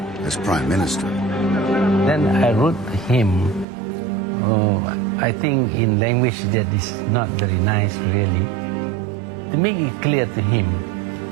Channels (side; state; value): left; drops out; at 3.7 s